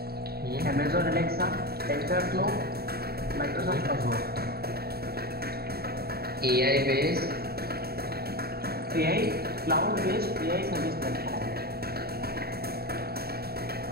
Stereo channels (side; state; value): left; late; 0.45 ms